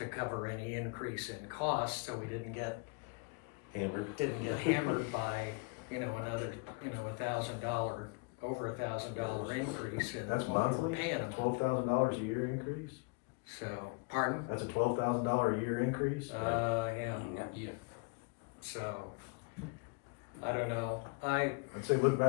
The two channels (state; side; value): quieter; right; 31.6 dB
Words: cover any increase in costs, so we didn't get Hammered. hammered by, another, $1,000, over $1,000 increase in That's what we're monthly? paying them. $12,000 a year increase? So, pardon? That's a $12,000 a year increase? Yeah, Yeah. so, I don't know, I I'd say look